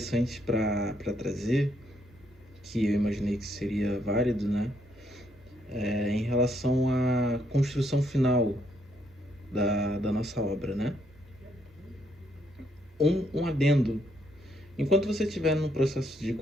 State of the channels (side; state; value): both; normal; correlation 0.73